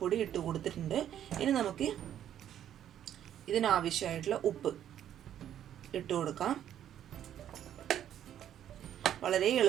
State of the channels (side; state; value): left; quieter; 10.6 dB